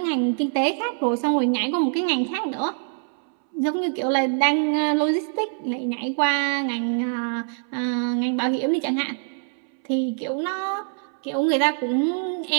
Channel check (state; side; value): silent; left; 62 dB below the other